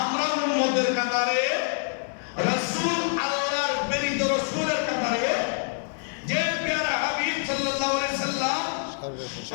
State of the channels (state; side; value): silent; right; digital silence